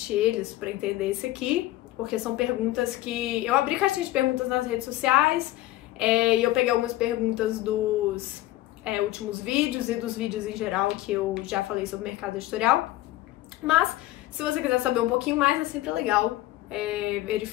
eles para entender esse aqui, porque são perguntas que... Eu abri caixinha de perguntas nas redes sociais e eu peguei algumas perguntas dos últimos vídeos e dos vídeos em geral que eu já falei sobre mercado editorial. Mas, se você quiser saber um pouquinho mais, é sempre legal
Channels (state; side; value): quieter; right; 16.3 dB